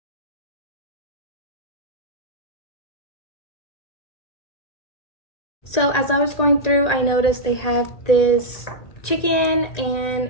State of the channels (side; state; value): right; late; 1.9 ms